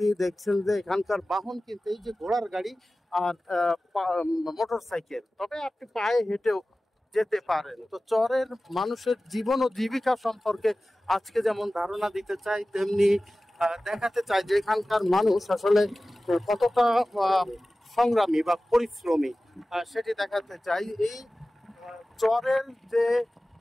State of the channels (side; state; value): both; normal; correlation 0.96